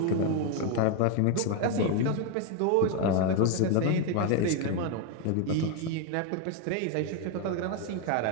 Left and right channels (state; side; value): different; both; correlation 0.01